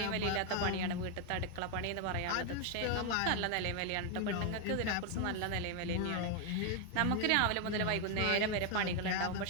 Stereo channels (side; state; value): both; different; correlation 0.01